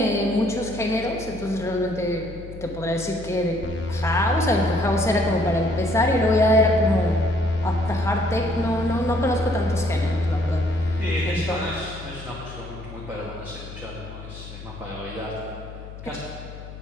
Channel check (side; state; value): left; noise; hum, 13 dB below the sound